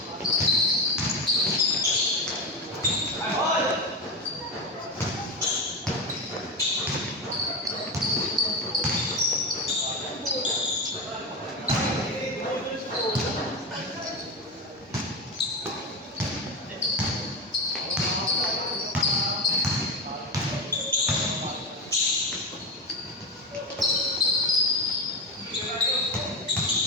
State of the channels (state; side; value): normal; both; correlation 0.17